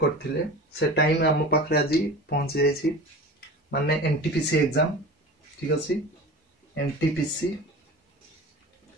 करथिले से टाइम हम पाखरे आज पहुंच जायछि माने एनटीपीसी एग्जाम ठीक अछि एनटीपीसी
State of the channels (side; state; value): both; normal; correlation 0.35